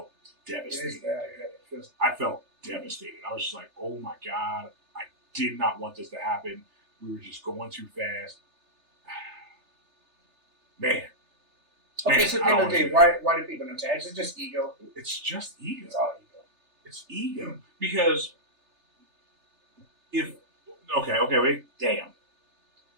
devastated. I felt devastated. I was just like, oh my God, I did not want this to happen. We were just going too fast. Man. Okay, so at the end of the day, why do people not tap? Is it just ego? It's just ego. It's all ego. It's ego. Because wait, damn.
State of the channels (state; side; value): late; left; 3.3 ms